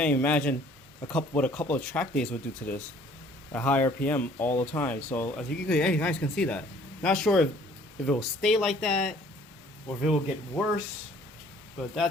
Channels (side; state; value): both; normal; correlation 0.56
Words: even imagine what a couple of track days would do to this at high RPM all the time. So as you guys can see that. Not sure if it will stay like that or if it will get worse, but